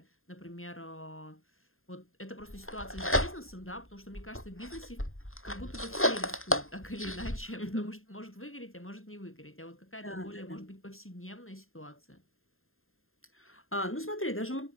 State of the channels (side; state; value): right; late; 0.61 ms